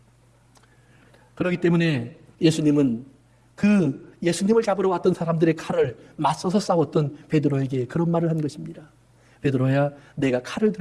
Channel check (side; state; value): both; identical; correlation 1.00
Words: 그렇기 때문에 예수님은 그 예수님을 잡으러 왔던 사람들의 칼을 맞서서 싸웠던 베드로에게 그런 말을 한 것입니다. 베드로야, 내가 칼을